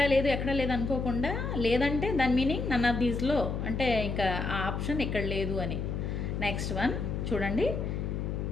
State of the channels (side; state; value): left; noise; hum, 2 dB below the sound